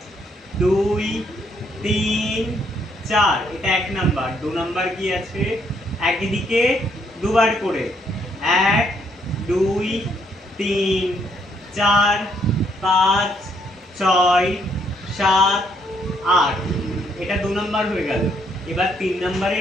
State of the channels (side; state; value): both; normal; correlation 0.71